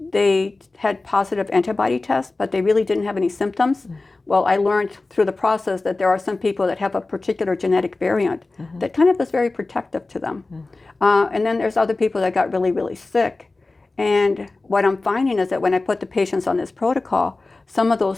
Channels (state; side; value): quieter; right; 3.3 dB